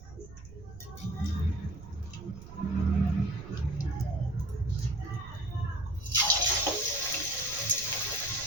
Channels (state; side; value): noise; right; rumble, 15 dB below the sound